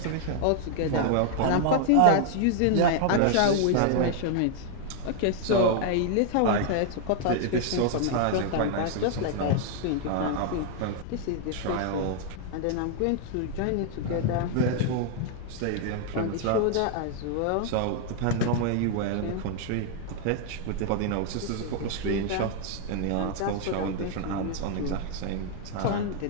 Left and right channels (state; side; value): different; both; correlation 0.00